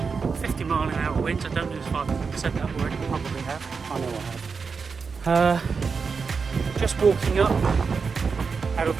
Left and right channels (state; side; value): quieter; left; 5.2 dB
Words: 50-mile-an-hour wind. I don't know if I've said that word. Probably have. I know I have. Just walking up out of